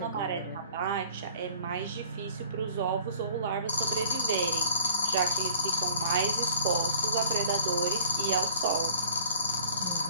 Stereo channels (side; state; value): both; inverted; correlation -0.52